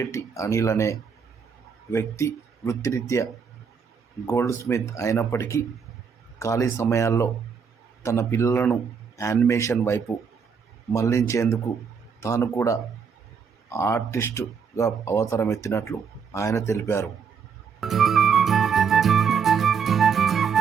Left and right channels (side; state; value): left; quieter; 6.3 dB